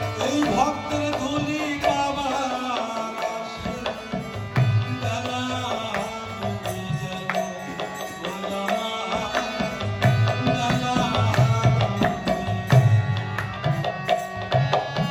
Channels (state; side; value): identical; both; correlation 1.00